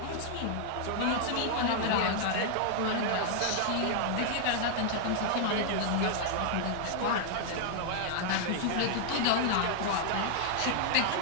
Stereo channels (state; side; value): different; both; correlation -0.01